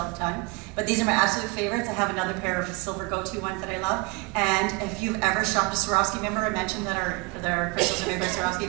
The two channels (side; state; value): left; quieter; 27.2 dB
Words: the time. But these are my absolute favorites. I have another pair of silver go-to ones that I love. And if you've ever shopped at Swarovski, remember I mentioned that our crystals are made by